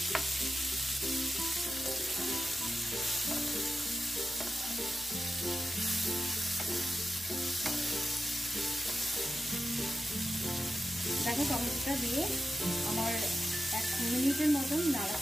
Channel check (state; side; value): normal; both; correlation 0.91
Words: দেখো টমেটোটা দিয়ে আমার 1 মিনিটের মতন